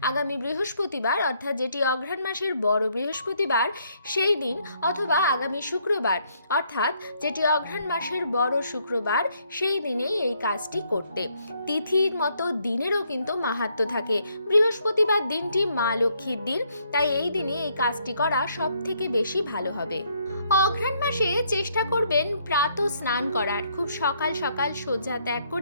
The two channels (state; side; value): inverted; both; correlation -0.70